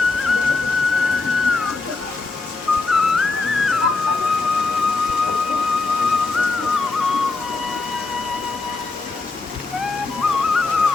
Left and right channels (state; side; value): quieter; right; 3.8 dB